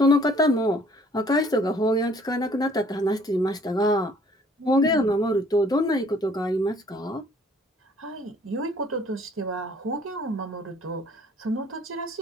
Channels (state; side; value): normal; both; correlation 0.58